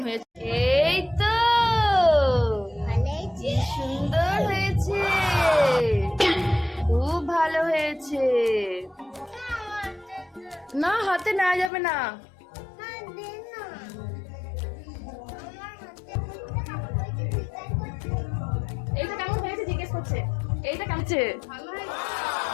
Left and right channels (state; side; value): drops out; right; at 11.7 s